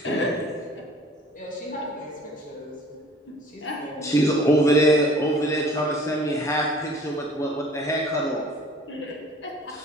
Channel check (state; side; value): normal; both; correlation 0.51